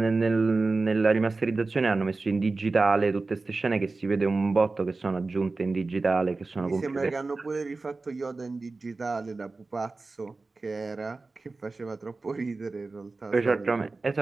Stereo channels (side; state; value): left; quieter; 3.6 dB